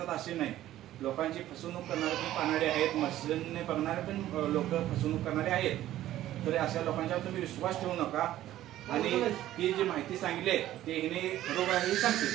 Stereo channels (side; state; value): left; quieter; 13.7 dB